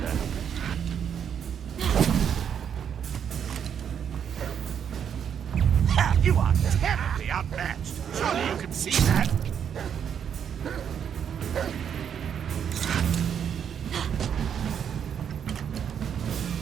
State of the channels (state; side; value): quieter; left; 8.2 dB